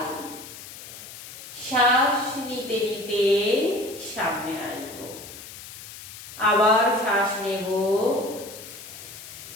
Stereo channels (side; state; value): left; noise; hiss, 14 dB below the sound